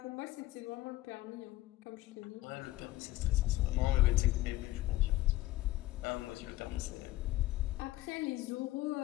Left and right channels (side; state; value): right; quieter; 16.6 dB